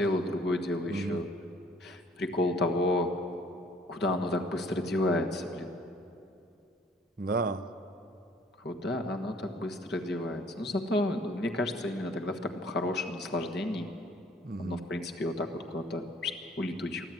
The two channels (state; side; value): normal; both; correlation 0.56